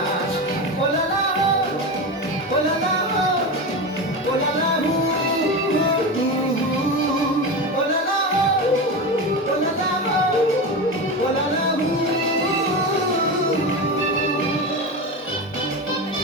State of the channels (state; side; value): normal; both; correlation 0.21